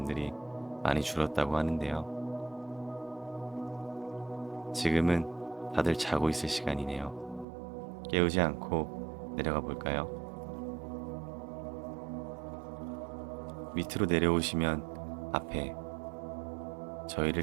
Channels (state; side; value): drops out; left; at 7.5 s